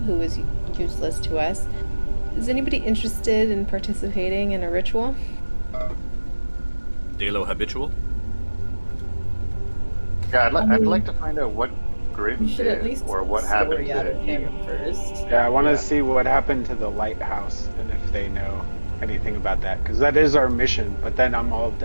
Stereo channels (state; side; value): inverted; both; correlation -1.00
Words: who is useless to us. Is anybody interested in participating in a ritual? Delo habitual? Yeah, I'd like to find out what Grim should at did, least or what happened story out to of him first. Yeah, I want to see what happened to the lighthouse and if they know anything about that, because that is our mission. But then I'm all